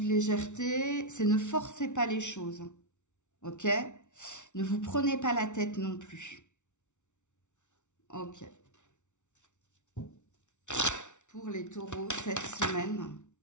de légèreté, c'est ne forcez pas les choses. Ok? Ne vous prenez pas la tête non plus. Ok. Pour les taureaux, cette semaine.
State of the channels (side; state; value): right; late; 0.84 ms